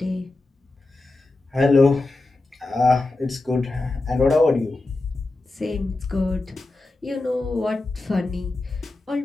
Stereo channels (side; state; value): right; quieter; 3.1 dB